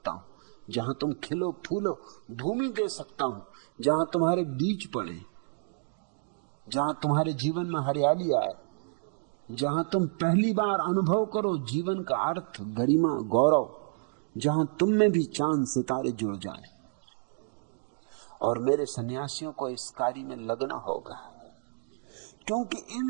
हूं जहां तुम खिलो फूलो, भूमि दे सकता हूं जहां तुम्हारे बीज पड़े, जहां तुम्हारे जीवन में हरियाली आए, जहां तुम पहली बार अनुभव करो जीवन का अर्थ, गरिमा, गौरव, जहां तुम में भी चांद सितारे जुड़ जाए। और मेरे सन्यासियों को इस कार्य में लगना होगा, क्योंकि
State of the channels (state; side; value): silent; left; digital silence